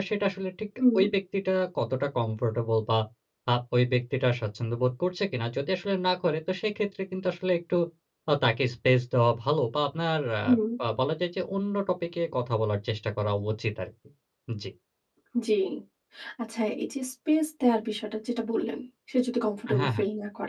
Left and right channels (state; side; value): identical; both; correlation 1.00